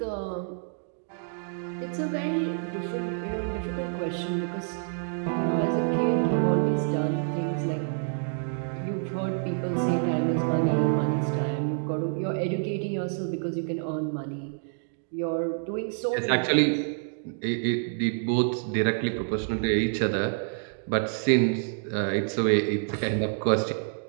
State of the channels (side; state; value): left; silent; digital silence